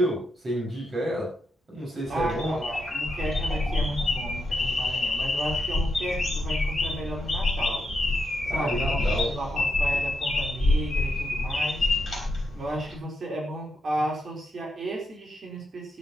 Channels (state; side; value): normal; both; correlation 0.83